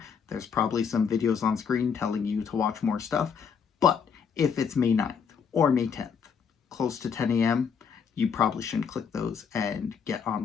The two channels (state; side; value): quieter; right; 6.6 dB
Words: There's probably some videos on screen telling you to watch more stuff. But if it's May 9th or May 10th, close to 10 a.m., you probably shouldn't click those and get on